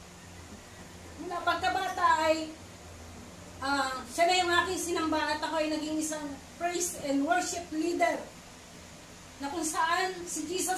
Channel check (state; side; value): identical; both; correlation 1.00